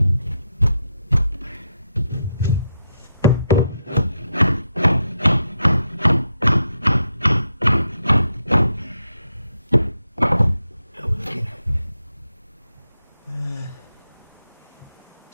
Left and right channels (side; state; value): both; inverted; correlation -0.82